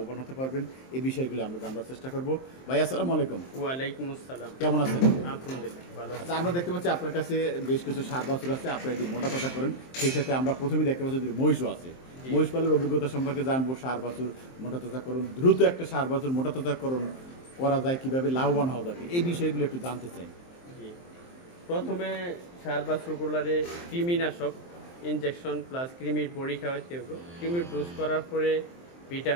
হতে পারবেন, এই বিষয়গুলো আমরা জানবার চেষ্টা করবো। ভাই আসসালামু আলাইকুম। ওয়ালাইকুম আসসালাম। কেমন আছেন? আলহামদুলিল্লাহ ভালো। আচ্ছা, আমরা দেখতে পাচ্ছি আপনার কাছে বেশ কিছু সার বাছুর আছে, আপনারা যদি মোটা তাজা করেন। সেই সাথে আমরা প্রথমেই দেখতে পাচ্ছি যে মহিষও আছে। মহিষ পালের অভিজ্ঞতা সম্পর্কে জানবো। সার বাছুর মোটা তাজা করুন, দ্রুত একটা সার বাছুর মোটা তাজা করুন করা যায়, কিভাবে লাভবান হওয়া যাবে, এই বিষয়গুলো একটু জানতে চাই। প্রথমে সার বাছুরগুলারে কৃমিনাশক ইনজেকশন প্লাস কৃমির বড়ি খাওয়াতে হবে। কৃমির ডোজ করার পরে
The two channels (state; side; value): late; right; 23 ms